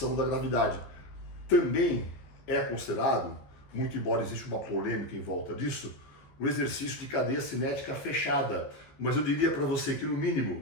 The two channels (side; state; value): right; late; 15 ms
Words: da gravidade. Também é considerado, muito embora exista uma polêmica em volta disso, o exercício de cadeia cinética fechada. Mas eu diria para você que, no